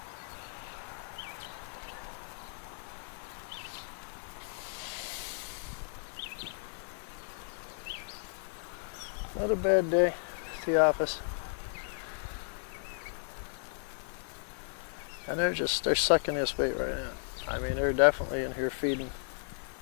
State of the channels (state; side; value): silent; right; digital silence